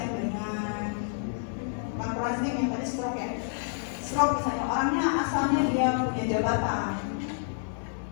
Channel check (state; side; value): silent; right; 59 dB below the other